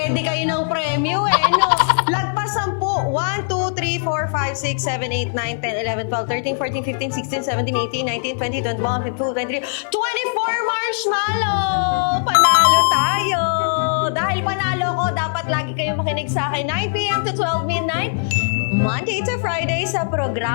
kayo ng premyo no? Lagpas 10. 1, 2, 3, 4, 5, 6, 7, 8, 9, 10, 11, 12, 13, 14, 15, 16, 17, 18, 19, 20, 21, 22, 23, 24 marshmallow! Panalo tayo! Dahil panalo ko, dapat lagi kayo makinig sa akin. 9 p.m. to 12 midnight, Monday to Friday sa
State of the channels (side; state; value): right; silent; 66 dB below the other